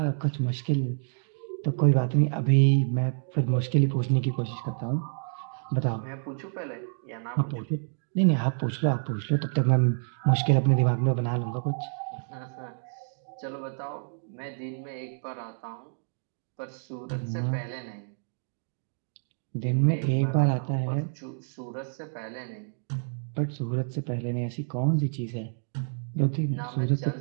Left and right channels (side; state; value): left; silent; digital silence